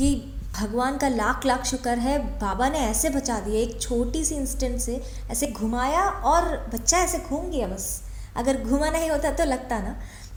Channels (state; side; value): identical; both; correlation 1.00